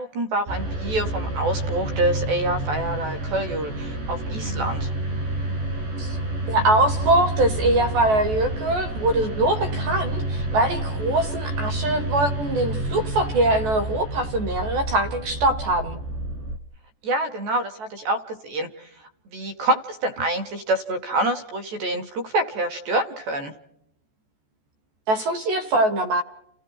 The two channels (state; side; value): late; left; 14 ms